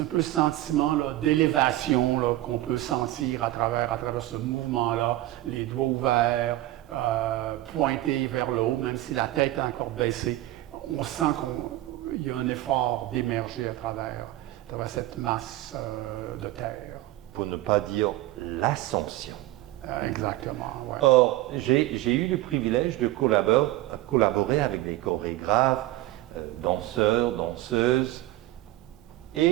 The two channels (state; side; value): quieter; left; 16.3 dB